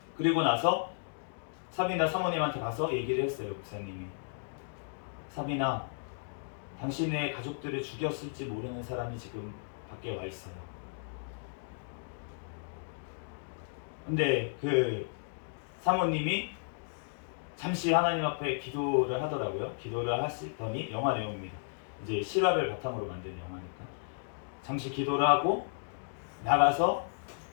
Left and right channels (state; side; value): silent; right; digital silence